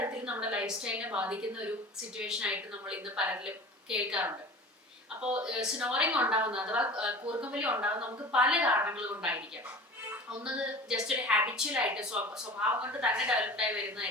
നമ്മുടെ ലൈഫ് സ്റ്റൈലിനെ ബാധിക്കുന്ന ഒരു സിറ്റുവേഷൻ ആയിട്ട് നമ്മൾ ഇന്ന് പലരിലും കേൾക്കാറുണ്ട്. അപ്പോൾ സ്നോറിങ് ഉണ്ടാകുന്ന അഥവാ കൂർക്കമ്പലി ഉണ്ടാകുന്ന നമുക്ക് പല കാരണങ്ങൾ കൊണ്ടായിരിക്കാം. ഒന്നത് ജസ്റ്റ് ഒരു ഹാബിച്വൽ ആയിട്ട് സ്വഭാവം കൊണ്ട് തന്നെ ഡെവലപ്ഡായി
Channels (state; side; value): normal; both; correlation 0.38